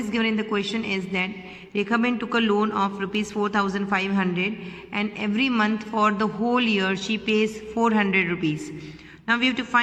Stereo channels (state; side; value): identical; both; correlation 1.00